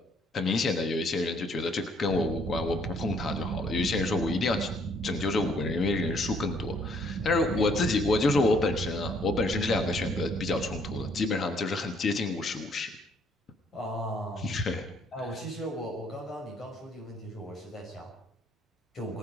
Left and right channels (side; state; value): both; normal; correlation 0.65